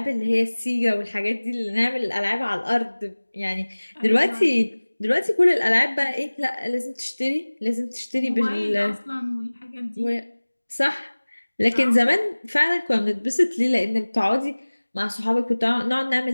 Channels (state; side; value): inverted; both; correlation -1.00